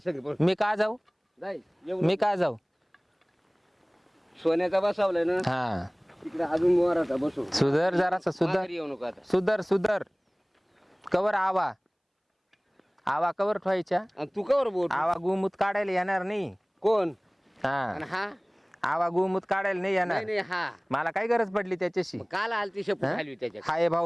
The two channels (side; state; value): both; identical; correlation 1.00